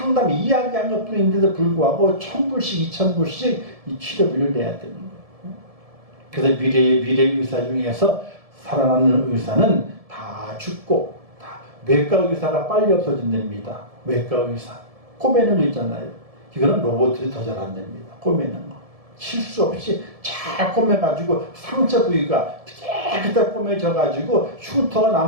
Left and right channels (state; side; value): late; left; 1.7 ms